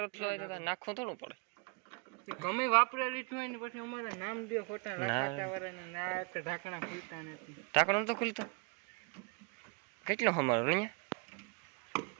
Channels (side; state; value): left; quieter; 33.3 dB